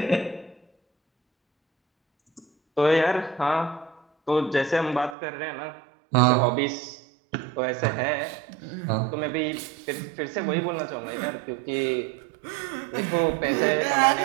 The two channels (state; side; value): drops out; left; at 5.2 s